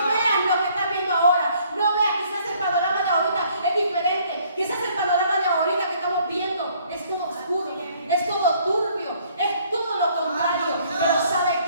vean lo que están viendo ahora, no vean. Quizás el panorama de ahorita es diferente, quizás el panorama de ahorita que estamos viendo es todo oscuro, es todo turbio, es todo lo contrario, pero ¿sabe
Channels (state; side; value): inverted; both; correlation -0.62